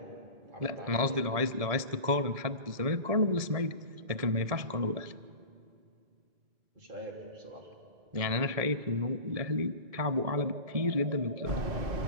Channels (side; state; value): left; late; 1.7 ms